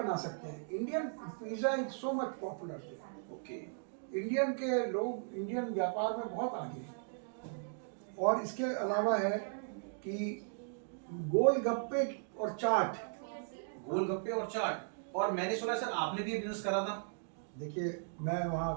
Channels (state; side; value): silent; left; digital silence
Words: सकते हैं। Indian pizza is so much popular. Okay. Indian के लोग इंडियन व्यापार में बहुत आगे हैं। और इसके अलावा है कि गोलगप्पे और चाट। गोलगप्पे और चाट, और मैंने सुना सर आपने भी बिजनेस करा था। देखिए, मैं